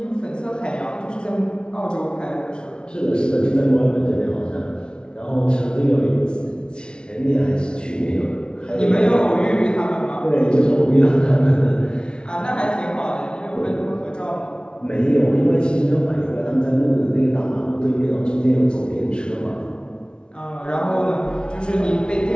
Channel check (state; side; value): late; right; 0.055 ms